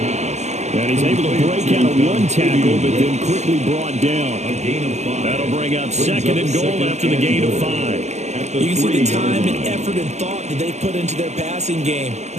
And he's able to break out of one tackle, but then quickly brought down. That'll bring up second and goal after the gain of 5. You can see the time and effort and thought that they put into their passing game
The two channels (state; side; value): late; left; 0.33 ms